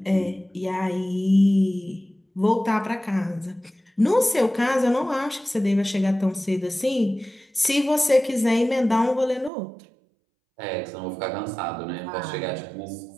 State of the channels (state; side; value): drops out; left; at 9.5 s